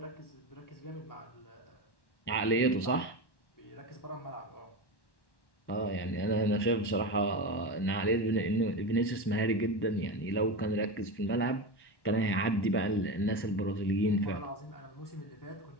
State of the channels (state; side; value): late; right; 1.1 ms